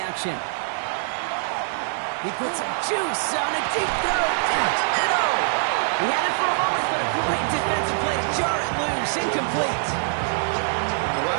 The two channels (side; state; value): left; silent; digital silence